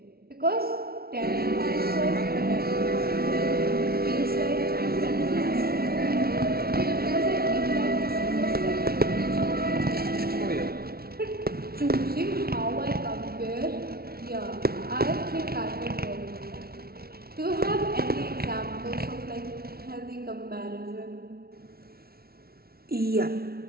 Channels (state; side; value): late; left; 0.44 ms